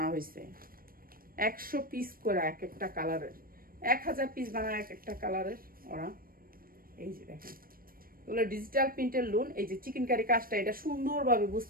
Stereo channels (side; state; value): left; late; 0.42 ms